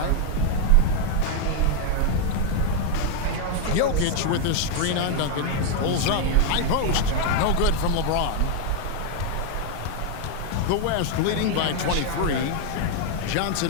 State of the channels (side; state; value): both; different; correlation 0.00